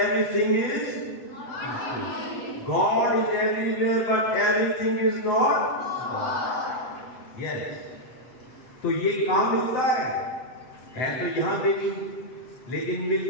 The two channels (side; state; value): right; late; 7.9 ms